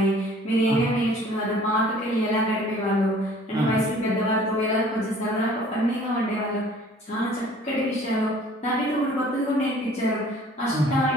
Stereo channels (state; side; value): normal; both; correlation 0.52